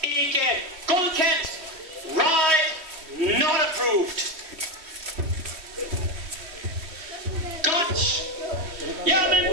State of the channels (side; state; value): left; late; 3.1 ms